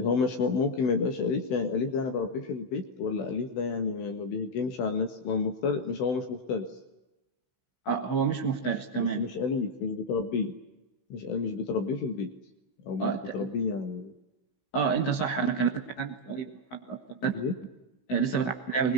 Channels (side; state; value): right; late; 16 ms